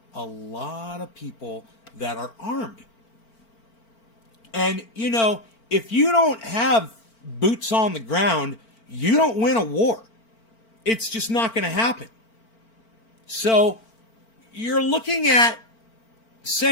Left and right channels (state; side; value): late; right; 4.4 ms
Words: a lot of people that are armed. And, you know, if you don't have boots on the ground, you don't win a war. It's just not going to happen. So you're looking at